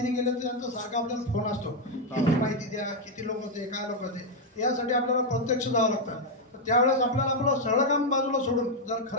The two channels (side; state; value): both; normal; correlation 0.02